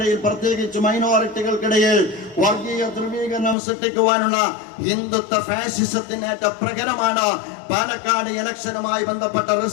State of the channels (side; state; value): right; drops out; at 3.6 s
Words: പ്രത്യേകിച്ച് മൈനോറിറ്റികൾക്കിടയിൽ വർഗീയ ധ്രുവീകരണം സൃഷ്ടിക്കുവാനുള്ള ഹിന്ദുത്വ ഫാസിസത്തിനേറ്റ പ്രകരമാണ് പാലക്കാട് ഇലക്ഷനുമായി ബന്ധപ്പെട്ട